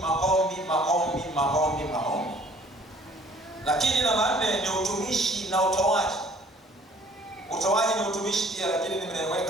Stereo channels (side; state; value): both; normal; correlation 0.55